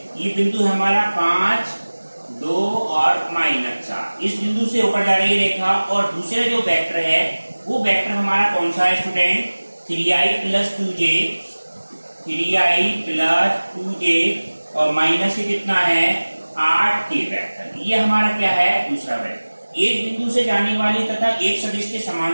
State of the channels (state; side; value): inverted; both; correlation -1.00